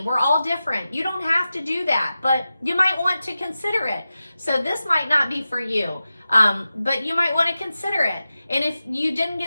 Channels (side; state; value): both; inverted; correlation -0.93